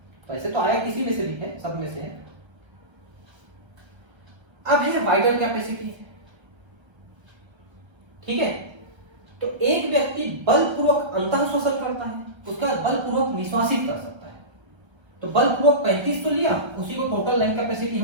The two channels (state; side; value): late; left; 1.3 ms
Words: वैसे तो आया किसी में से भी है, सब में से है। अब है वाइटल कैपेसिटी, ठीक है। तो एक व्यक्ति बलपूर्वक अंतः श्वसन करता है, उसका बलपूर्वक निश्वासित कर सकता है। तो बलपूर्वक 35 तो लिया, उसी को टोटल लंग कैपेसिटी